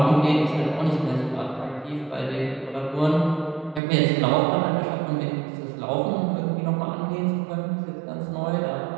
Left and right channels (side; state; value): left; drops out; at 3.8 s